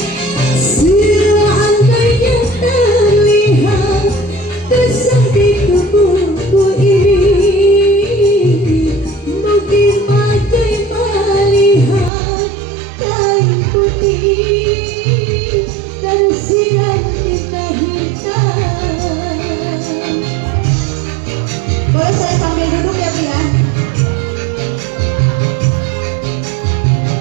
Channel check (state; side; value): drops out; left; at 12.1 s